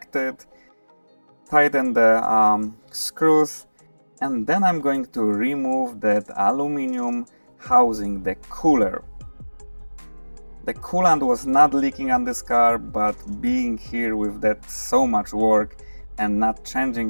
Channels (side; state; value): both; inverted; correlation -1.00